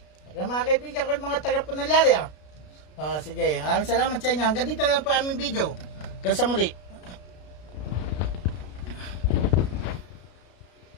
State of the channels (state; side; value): late; right; 33 ms